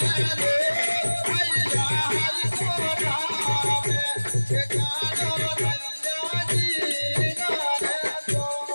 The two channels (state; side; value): inverted; both; correlation -1.00